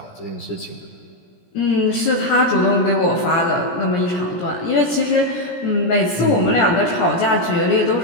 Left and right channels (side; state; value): right; late; 17 ms